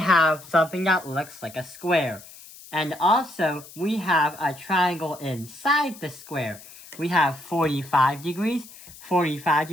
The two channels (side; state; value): left; noise; hiss, 19 dB below the sound